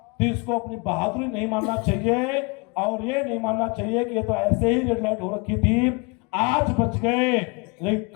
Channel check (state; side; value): quieter; right; 30.1 dB